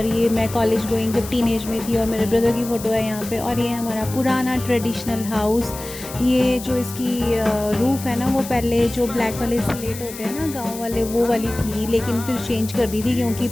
ये मैं कॉलेज गोइंग जब टीनेज में थी, और मेरे ब्रदर की फ़ोटो है यहाँ पे। और ये हमारा पुराना ट्रेडिशनल हाउस। ये जो इसकी रूफ़ है ना वो पहले जो ब्लैक वाले स्लेट होते हैं ना गाँव वाले, वो वाली थी, लेकिन फिर चेंज कर दी थी क्योंकि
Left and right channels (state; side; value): noise; left; hiss, 13 dB below the sound